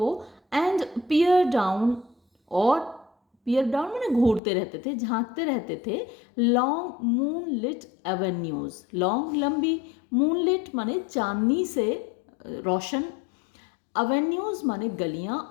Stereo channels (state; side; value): drops out; right; at 4.4 s